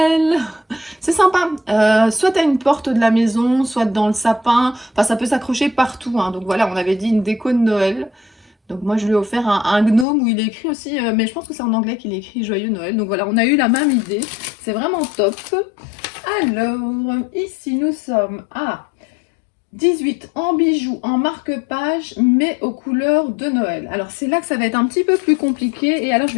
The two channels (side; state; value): right; drops out; at 10.1 s